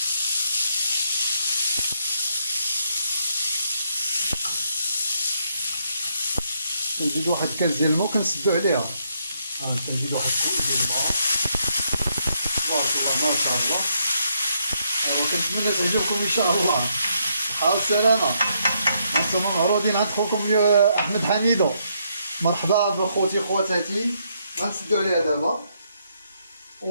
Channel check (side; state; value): both; inverted; correlation -0.75